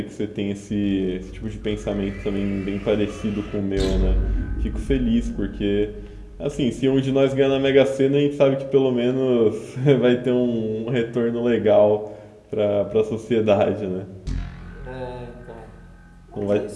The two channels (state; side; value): identical; both; correlation 1.00